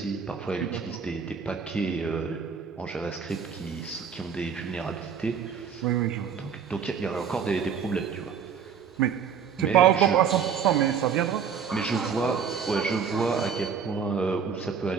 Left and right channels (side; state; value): left; quieter; 7.0 dB